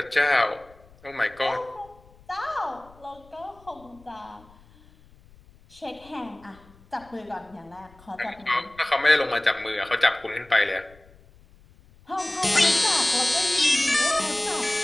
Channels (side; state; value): left; noise; rumble, 26 dB below the sound